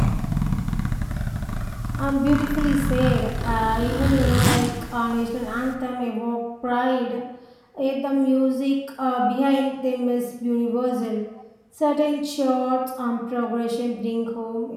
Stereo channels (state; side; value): identical; both; correlation 1.00